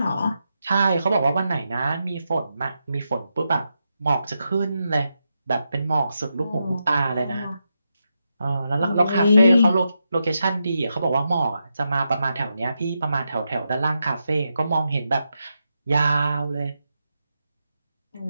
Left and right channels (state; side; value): inverted; both; correlation -0.86